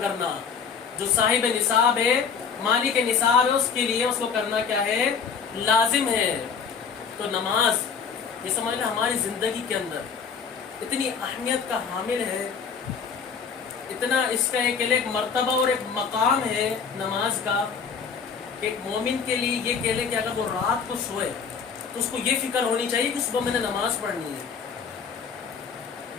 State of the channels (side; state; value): right; quieter; 6.2 dB